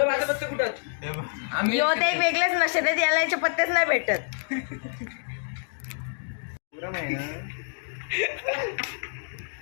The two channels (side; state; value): right; silent; digital silence